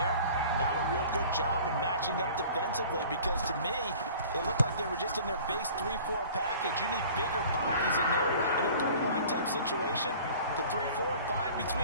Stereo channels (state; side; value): inverted; both; correlation -0.46